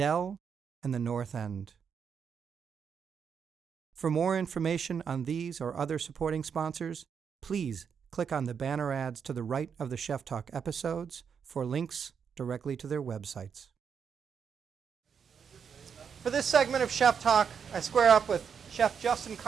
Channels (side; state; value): left; quieter; 6.9 dB